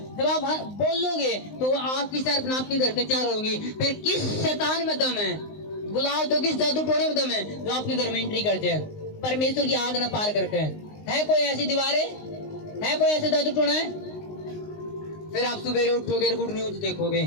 जब आप बोलोगे तो आग की शहरपनाह आपके घर के चारों होंगी। फिर किस शैतान में दम है, बुलाओ तो किस जादू टोने में दम है जो आपके घर में एंट्री करते हैं, परमेश्वर की आग ना पार करते हैं? है कोई ऐसी दीवारें? है कोई ऐसे जादू टोना है? फिर आप सुबह उठोगे, गुड न्यूज देखोगे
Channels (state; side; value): late; right; 19 ms